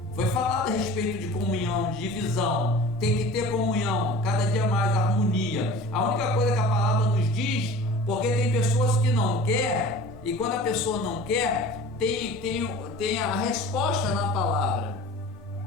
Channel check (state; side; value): normal; both; correlation 0.41